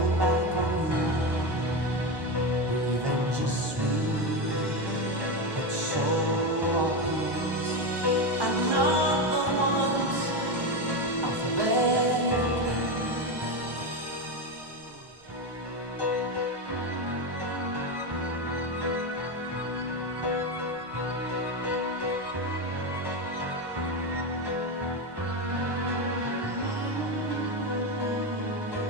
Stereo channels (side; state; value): left; late; 1.2 ms